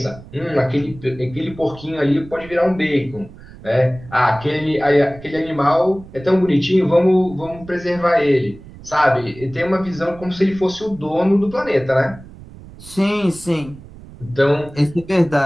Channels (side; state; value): right; noise; rumble, 18 dB below the sound